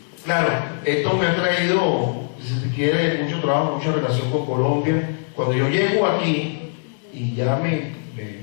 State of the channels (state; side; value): silent; right; digital silence